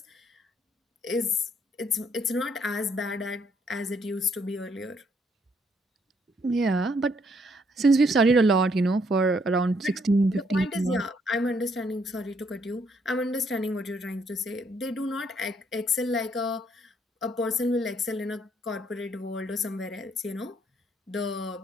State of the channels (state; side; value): normal; both; correlation 0.69